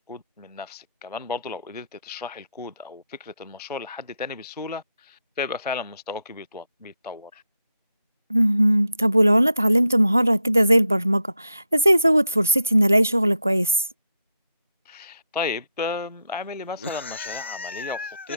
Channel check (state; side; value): inverted; both; correlation -0.83